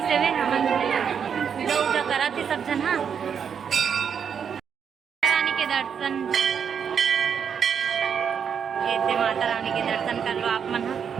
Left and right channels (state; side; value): quieter; left; 7.3 dB